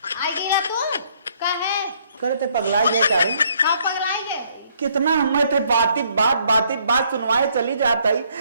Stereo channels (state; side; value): inverted; both; correlation -0.67